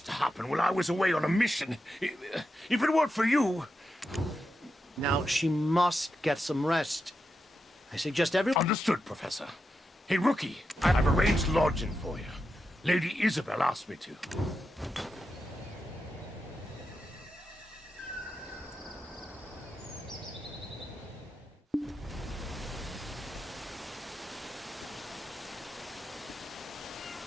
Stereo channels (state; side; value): normal; both; correlation 0.87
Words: to happen while I was away on a mission, if it weren't for you... Now, she must get some rest. I suggest everyone... Understood, Professor. Hey, Rookie, I've arranged lodging for you. Lady Isabel asked me to.